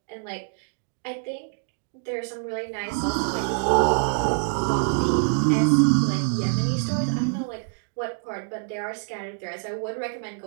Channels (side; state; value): left; silent; digital silence